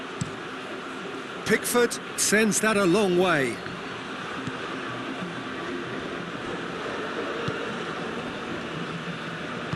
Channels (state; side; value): identical; both; correlation 1.00